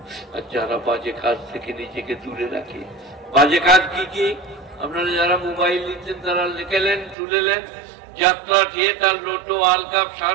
আর যারা বাজে কাজ থেকে নিজেকে দূরে রাখে। বাজে কাজ কি কি? আপনারা যারা মোবাইল নিচ্ছেন তারা লিখেলেন, তুলেলেন, যাত্রা, থিয়েটার, লোটো, ওয়ার্ল্ড কাপ,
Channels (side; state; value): left; drops out; at 7.2 s